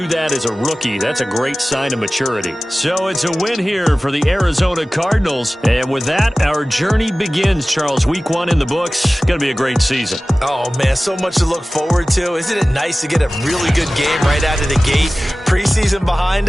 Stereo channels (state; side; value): normal; both; correlation 0.97